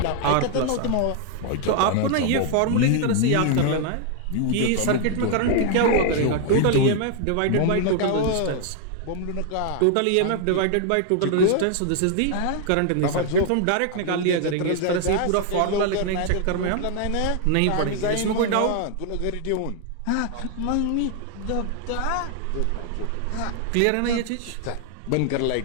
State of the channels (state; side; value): different; both; correlation 0.00